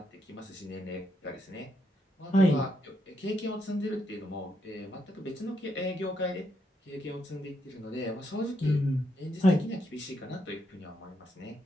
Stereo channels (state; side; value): normal; both; correlation 0.78